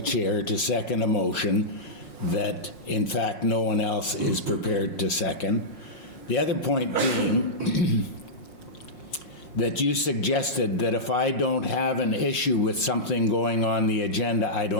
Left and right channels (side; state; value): right; late; 5.6 ms